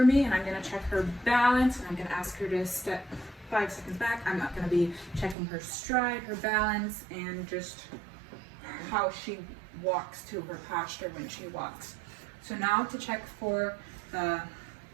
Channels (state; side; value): drops out; left; at 5.4 s